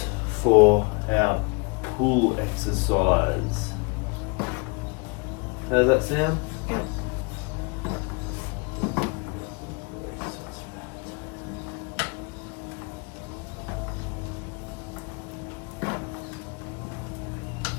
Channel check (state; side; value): quieter; right; 32.6 dB